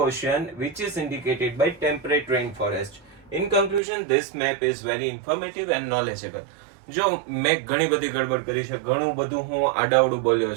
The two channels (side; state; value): left; drops out; at 3.8 s